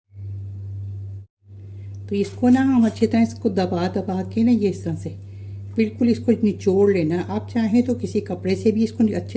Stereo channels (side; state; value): both; identical; correlation 1.00